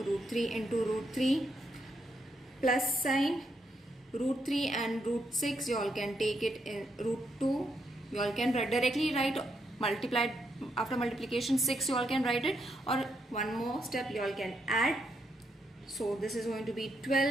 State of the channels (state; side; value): normal; both; correlation 0.79